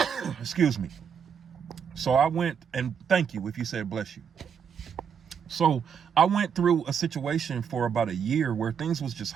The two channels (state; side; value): quieter; left; 7.2 dB